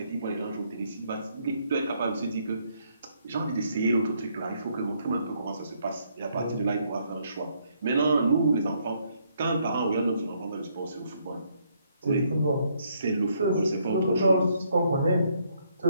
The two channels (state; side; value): inverted; both; correlation -0.72